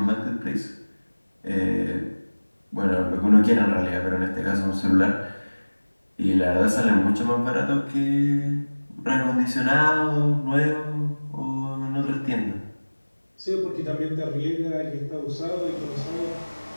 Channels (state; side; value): inverted; both; correlation -1.00